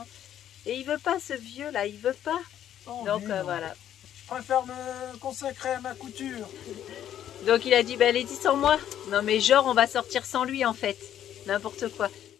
Et il veut pas ce vieux là, il veut pas. Oh, donc voilà. Je préfère me consacrer à ma couture. Donc il a dit bah allez dis sans moi. Non mais genre on va sortir sans lui en fait. N'importe quoi.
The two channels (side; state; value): right; quieter; 10.7 dB